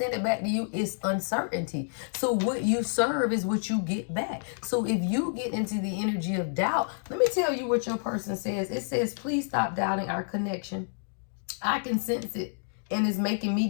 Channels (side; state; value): right; silent; digital silence